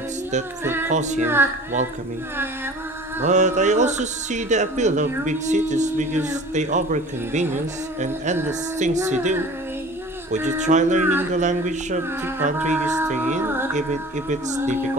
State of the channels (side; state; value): both; normal; correlation 0.43